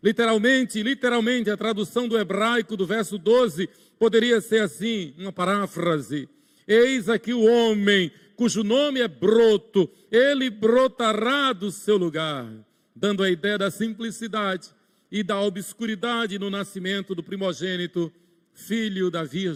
Literalmente, a tradução do hebraico do verso 12 poderia ser assim, uma paráfrase. Eis aqui o homem cujo nome é broto, ele brotará do seu lugar, dando a ideia da simplicidade e da obscuridade no nascimento do primogênito, filho da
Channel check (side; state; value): both; identical; correlation 1.00